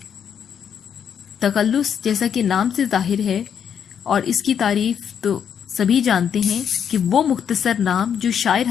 तख़ल्लुस जैसा कि नाम से ज़ाहिर है, और इसकी तारीफ़ तो सभी जानते हैं कि वो मुख्तसर नाम जो शायर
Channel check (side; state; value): right; quieter; 8.1 dB